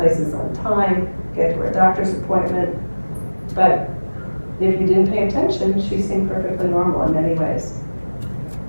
places on time, get to her doctor's appointment. But if you didn't pay attention, she seemed perfectly normal in many ways.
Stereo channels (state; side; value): inverted; both; correlation -1.00